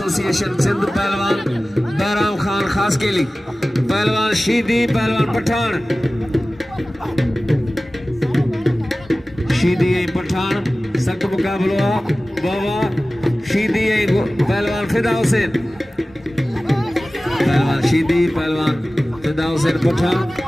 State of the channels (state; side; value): normal; both; correlation 0.97